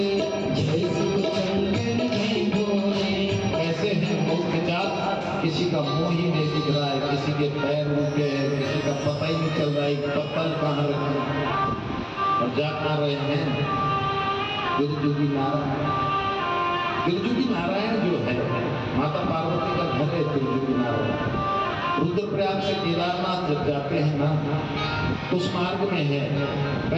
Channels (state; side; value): identical; both; correlation 1.00